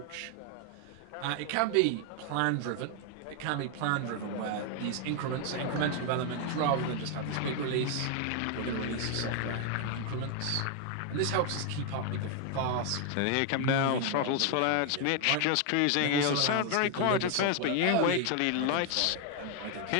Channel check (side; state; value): both; different; correlation 0.00